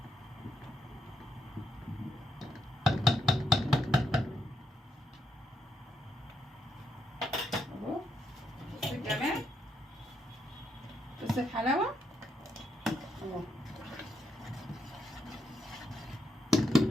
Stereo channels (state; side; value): normal; both; correlation 0.79